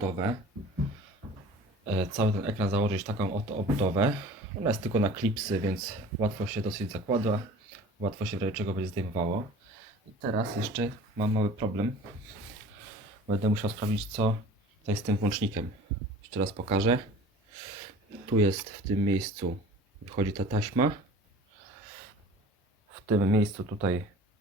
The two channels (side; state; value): both; normal; correlation 0.43